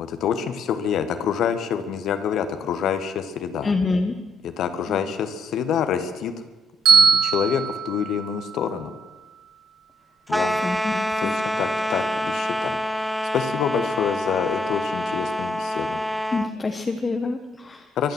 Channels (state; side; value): normal; both; correlation 0.74